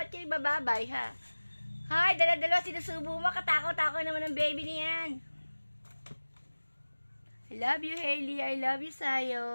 kayo bababay, ha? Hay, dala-dala sinusubo mo. Katakaw-takaw naman ang baby niyan. I love you, Hailey. I love you,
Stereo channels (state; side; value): inverted; both; correlation -1.00